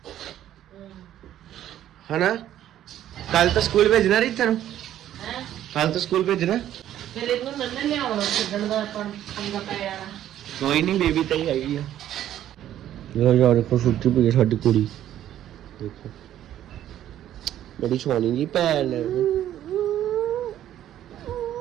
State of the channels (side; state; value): left; quieter; 11.8 dB